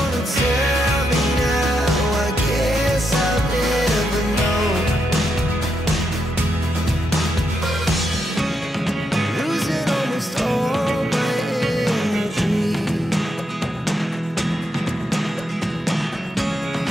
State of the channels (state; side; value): normal; both; correlation 0.82